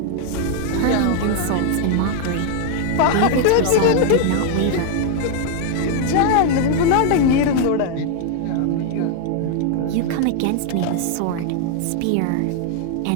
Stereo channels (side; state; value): both; different; correlation 0.00